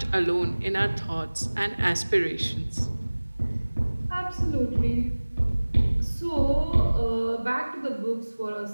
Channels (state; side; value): inverted; both; correlation -1.00